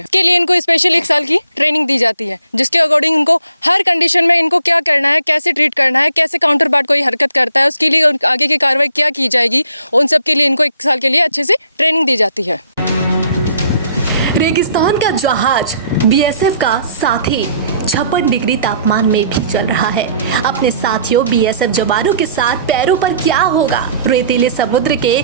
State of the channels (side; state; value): both; inverted; correlation -0.62